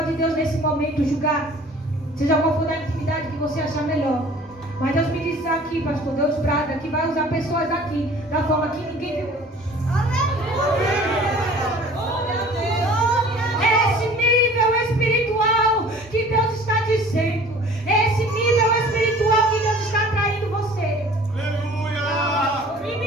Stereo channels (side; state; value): both; normal; correlation 0.48